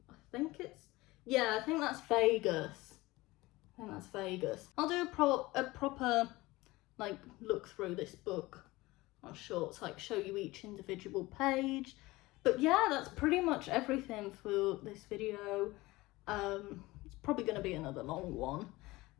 think it's, yeah, I think that's Vegas. I'll do a proper like look through this book on shorts, like show you each individual page. But yeah, that's pretty much everything for this video. It's probably going to be another long one,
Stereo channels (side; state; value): right; quieter; 20.2 dB